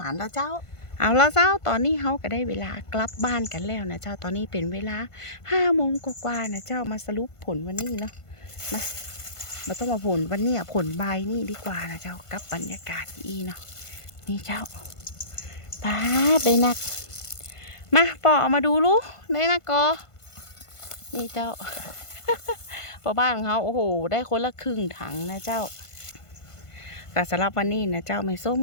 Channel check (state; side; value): late; right; 1.5 ms